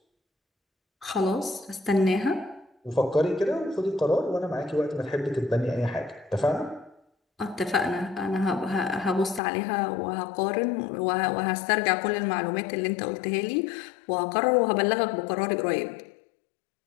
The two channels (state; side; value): drops out; right; at 9.4 s